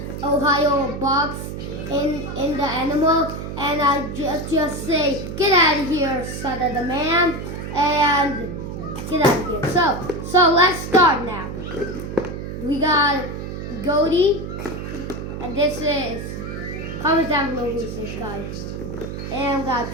Ohioboss in the animal, and I just say, get out of here, son of the man, and get out of here. So let's start now. We got Goaty, and this is, comment down below who's this guy. And we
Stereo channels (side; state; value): right; noise; hum, 7 dB below the sound